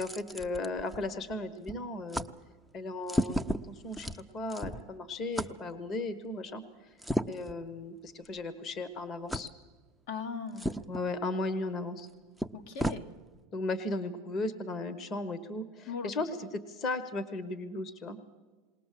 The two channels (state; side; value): normal; both; correlation 0.62